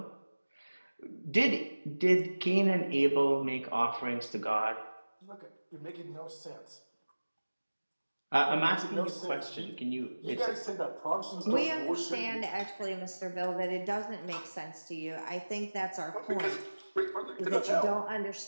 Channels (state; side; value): inverted; both; correlation -1.00